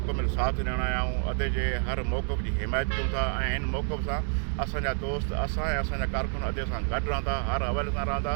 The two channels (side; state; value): left; silent; 56 dB below the other